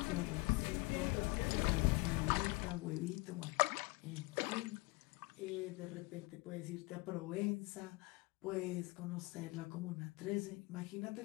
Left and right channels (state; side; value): quieter; right; 25.7 dB